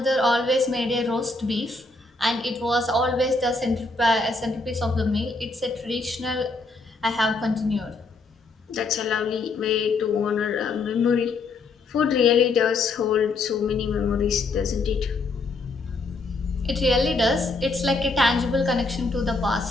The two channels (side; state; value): right; quieter; 3.5 dB